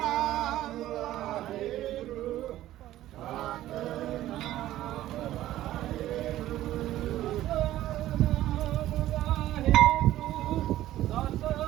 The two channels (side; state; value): left; quieter; 14.2 dB